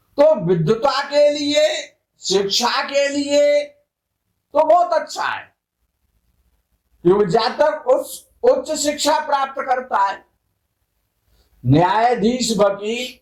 तो विद्वता के लिए, शिक्षा के लिए तो बहुत अच्छा है, क्योंकि जातक उच्च शिक्षा प्राप्त करता है, न्यायाधीश, वकील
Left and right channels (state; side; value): identical; both; correlation 1.00